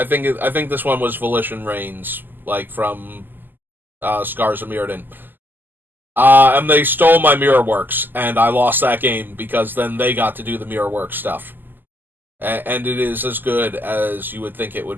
think this one was Volition Reigns, like from Scars of Mirrodin. And they stole my Mirror Works, and I lost that game because then they got to do the Mirror Works stuff. And it is as good as you would think it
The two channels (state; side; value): late; left; 0.090 ms